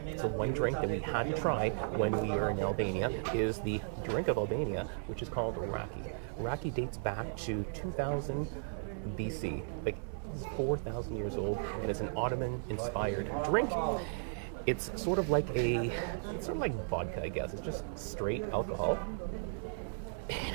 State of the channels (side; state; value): left; silent; 54 dB below the other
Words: so one drink that we had to try when we were in Albania is the drink of Albania, which is called raki. Raki dates back to 2000 BC, like it's 4,000 years old, and it's an Ottoman-inspired drink. It's sort of like vodka, I guess. It's just straight alcohol. It